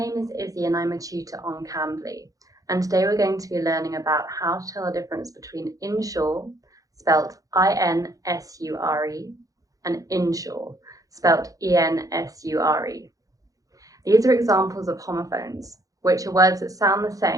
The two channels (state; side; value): late; left; 0.17 ms